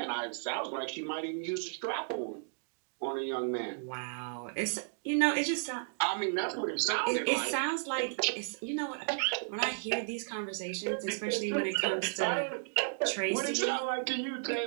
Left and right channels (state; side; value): silent; left; digital silence